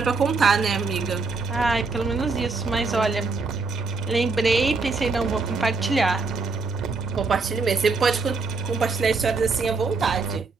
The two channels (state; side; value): quieter; left; 4.1 dB